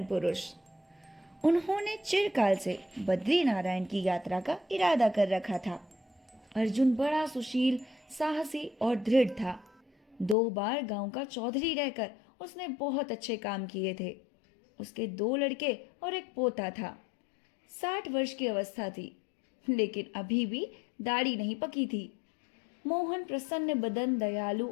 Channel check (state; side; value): drops out; right; at 10.4 s